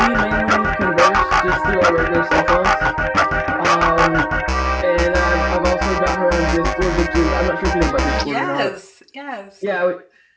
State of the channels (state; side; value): identical; both; correlation 1.00